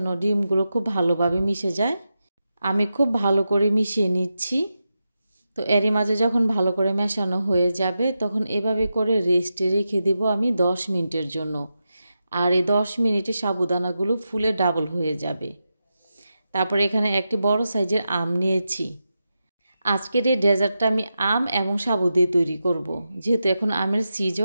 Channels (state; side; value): inverted; both; correlation -0.89